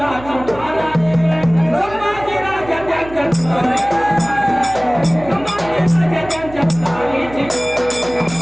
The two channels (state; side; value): noise; right; hum, 16 dB below the sound